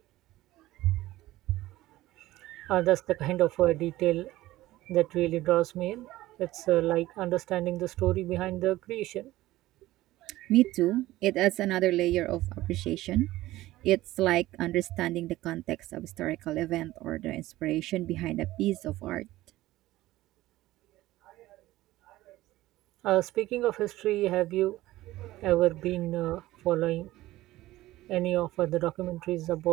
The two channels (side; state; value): left; quieter; 16.6 dB